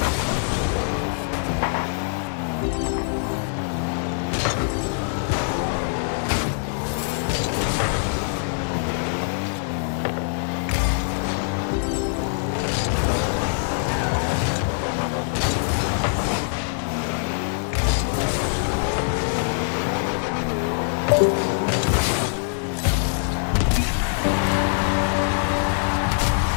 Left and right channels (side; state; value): right; silent; digital silence